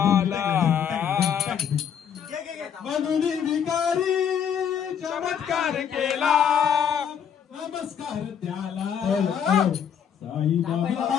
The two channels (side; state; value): right; quieter; 8.1 dB